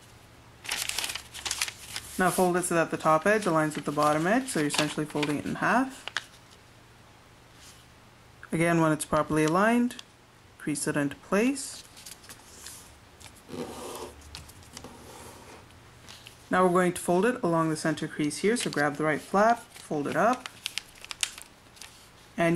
Now fold it so that the top edge aligns with the bottom edge, so you're essentially folding it in half. Again, when it's properly aligned, crease it into place. Now we're going to fold it along the center crease here, so grab the right flap, fold it up.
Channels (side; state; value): both; identical; correlation 1.00